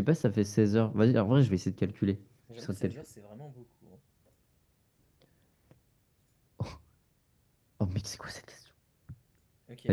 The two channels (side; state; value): both; identical; correlation 1.00